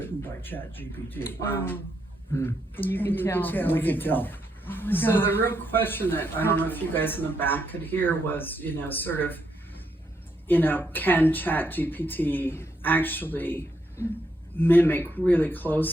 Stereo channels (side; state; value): both; normal; correlation 0.78